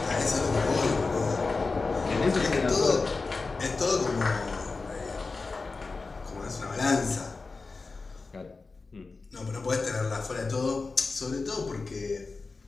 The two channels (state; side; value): quieter; right; 4.0 dB